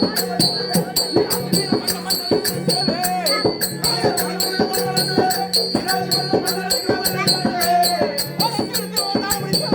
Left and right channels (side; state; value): both; identical; correlation 1.00